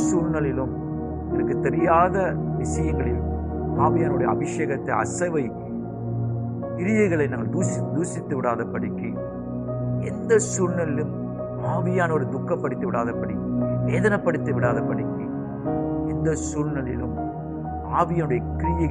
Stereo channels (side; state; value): both; identical; correlation 1.00